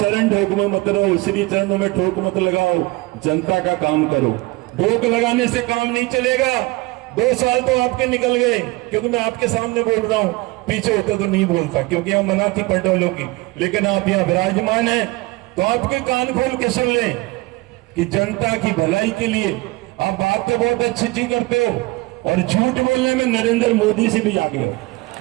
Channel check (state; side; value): quieter; left; 22.4 dB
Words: ठोक में मत रहो, श्री चरणों में ठोक मत लगाओ, जनता का काम करो। ठोक लगाने से काम नहीं चलेगा। 2 साल तो आपके निकल गए, क्योंकि मैं आपके सामने बोल रहा हूं, पीछे होता तो नहीं बोलता क्योंकि हम मना थी पटोलों की। लेकिन आप यहाँ विराजमान हैं तो आपके कान खोल के सुन लें कि जनता की भलाई के लिए आप बात तो बहुत अच्छी करते हो और झूठ बोलने में नरेंद्र मोदी से भी आगे हो,